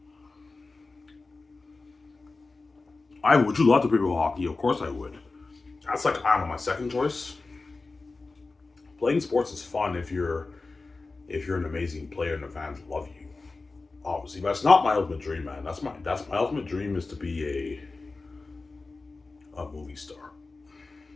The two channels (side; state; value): right; quieter; 3.7 dB